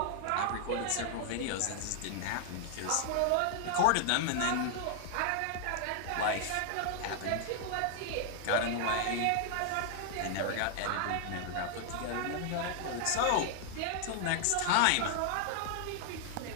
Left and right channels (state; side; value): different; both; correlation 0.00